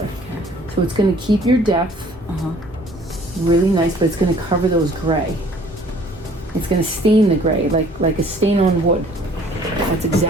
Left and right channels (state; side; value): normal; both; correlation 0.55